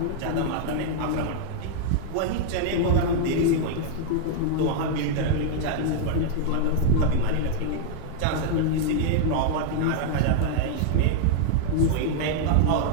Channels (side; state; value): both; different; correlation -0.01